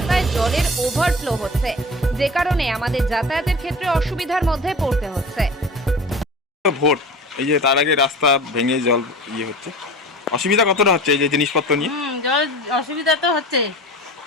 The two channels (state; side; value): normal; both; correlation 0.36